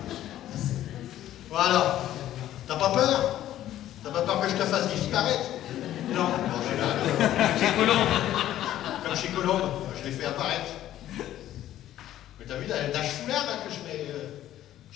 Voilà. T'as pas peur? T'as pas peur que je te fasse disparaître? Non. Bon, j'ai là. Chez Colombe. Comme chez Colombe, je l'ai fait apparaître. Mais t'as vu la foulard là que je mets.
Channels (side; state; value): right; quieter; 12.8 dB